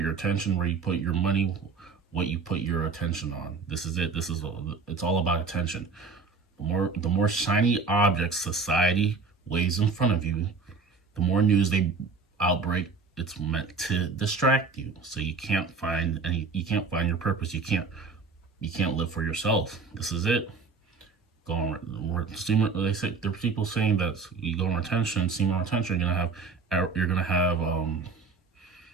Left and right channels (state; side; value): quieter; left; 4.7 dB